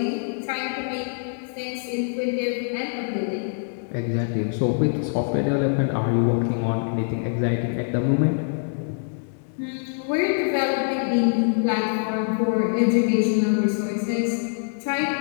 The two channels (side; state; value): right; silent; digital silence